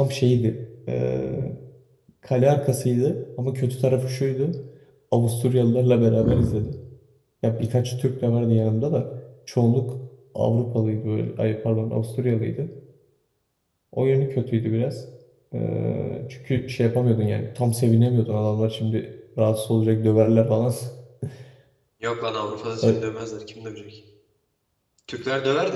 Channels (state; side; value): identical; both; correlation 1.00